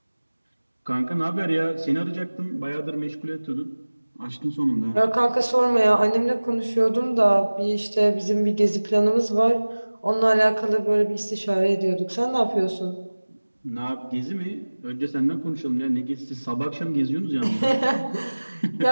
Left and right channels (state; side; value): inverted; both; correlation -1.00